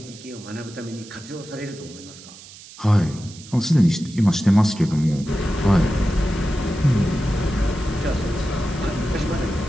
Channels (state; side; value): noise; right; hiss, 18 dB below the sound